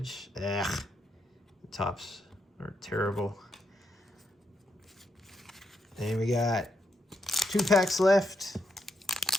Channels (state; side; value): normal; both; correlation 0.81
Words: Ugh. The tops are terrible. And we got 2 packs left.